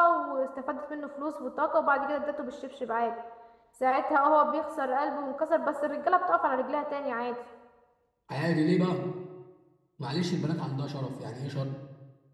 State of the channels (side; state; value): both; identical; correlation 1.00